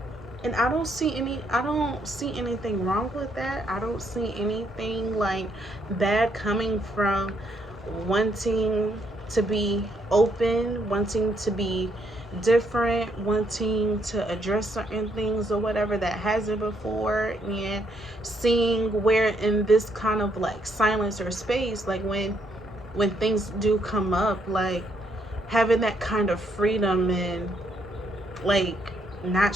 And I don't see anything wrong with that. I don't see anything like bad coming from wanting to be open, wanting to be different, wanting to address certain things or whatever that hasn't before, and seeing where in this kind of like silence or space, like when things do come up, like having that kind of freedom and like not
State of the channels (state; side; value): normal; both; correlation 0.73